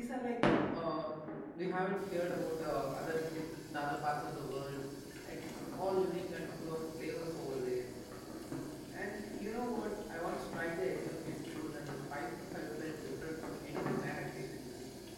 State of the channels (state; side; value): identical; both; correlation 1.00